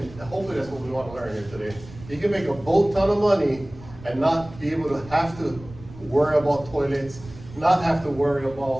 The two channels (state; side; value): noise; right; rumble, 18 dB below the sound